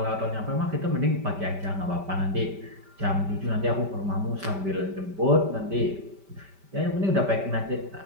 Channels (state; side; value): late; left; 5.1 ms